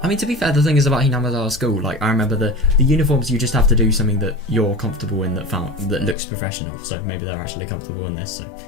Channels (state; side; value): drops out; right; at 6.2 s